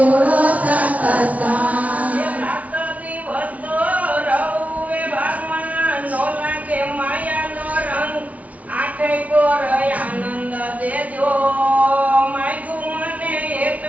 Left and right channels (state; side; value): late; left; 0.069 ms